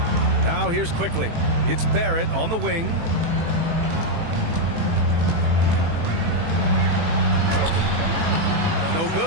Now here's quickly. It's Barrett on the wing. No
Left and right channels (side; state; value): left; late; 18 ms